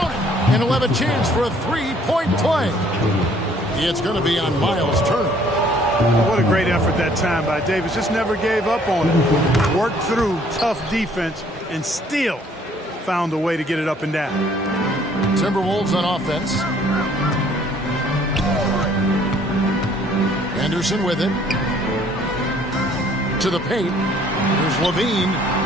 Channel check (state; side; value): normal; both; correlation 0.60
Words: it. And he'll have a chance for a 3-point play. It's going to be on Miles Turner. What a great effort that time by Davis. Just never gave up on it. Worked through tough defense and still found a way to get it up and down. Timberwolves on offense. Anderson with it. To the paint. Here's Levine.